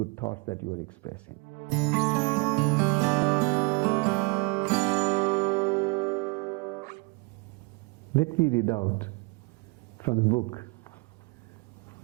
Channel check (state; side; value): quieter; left; 29.6 dB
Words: thoughts that you are expressing. Let me read out from the book,